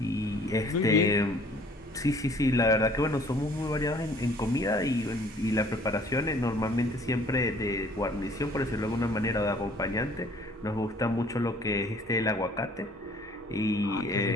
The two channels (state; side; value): normal; both; correlation 0.55